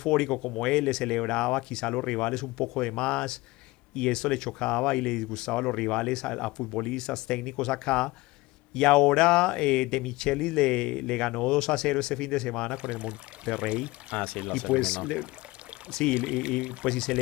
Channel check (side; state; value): right; quieter; 20.9 dB